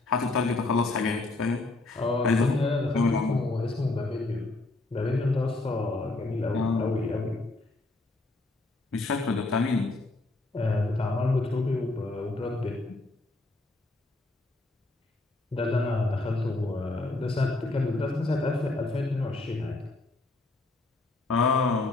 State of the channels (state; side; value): quieter; right; 3.1 dB